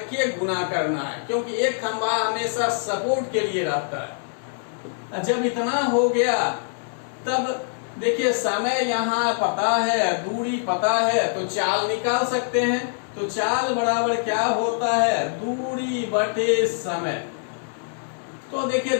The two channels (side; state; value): right; silent; 58 dB below the other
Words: गुना करना है, क्योंकि एक खंभा हमेशा सपोर्ट के लिए रहता है। जब इतना हो गया तब देखिए समय यहाँ पता है, दूरी पता है, तो चाल निकाल सकते हैं। तो चाल बराबर क्या होता है, दूरी बटे समय। तो देखिए